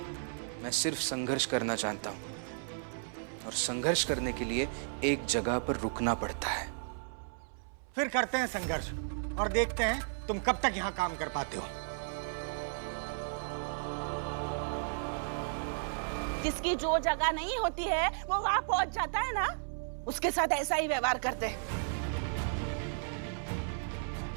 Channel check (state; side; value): silent; left; 55 dB below the other